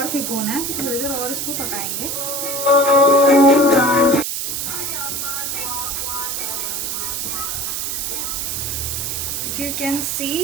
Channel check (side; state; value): right; noise; hiss, 2 dB below the sound